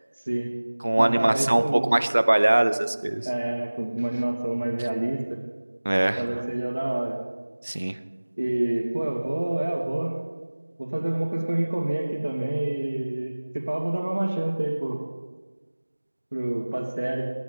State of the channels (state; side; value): inverted; both; correlation -1.00